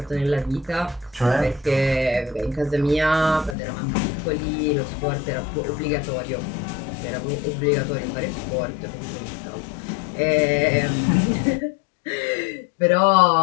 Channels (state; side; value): drops out; right; at 3.6 s